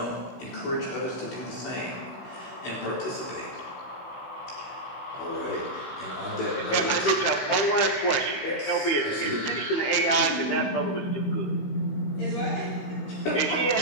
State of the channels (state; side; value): late; right; 15 ms